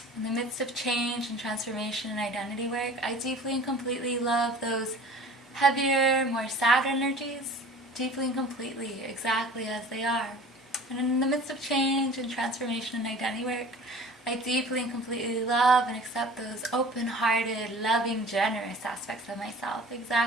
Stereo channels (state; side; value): normal; both; correlation 0.44